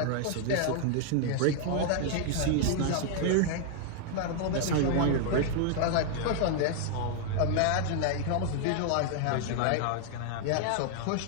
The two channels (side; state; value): both; different; correlation 0.00